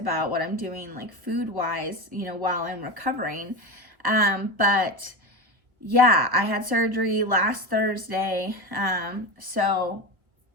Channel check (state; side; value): late; left; 1.0 ms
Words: what I'm doing like food wise, you know, while I'm recovering. But yeah, I had surgery last Thursday. So